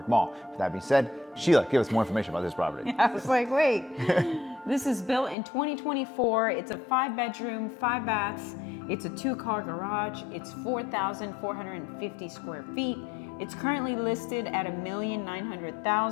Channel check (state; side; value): drops out; right; at 5.4 s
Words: Mall. With that being said, Sheila, give us more information about this property. I was like, wait. This is built in 2024. It's a 5-bedroom, 5 baths. It's a 2-car garage. It's 4,450 square feet. It's currently listed at